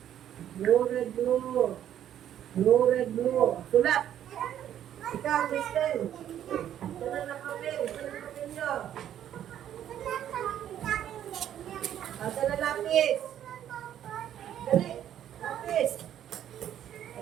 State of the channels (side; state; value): left; quieter; 10.7 dB